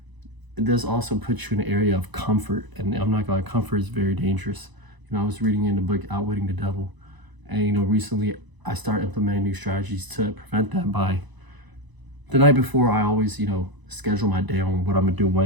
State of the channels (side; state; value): left; late; 1.0 ms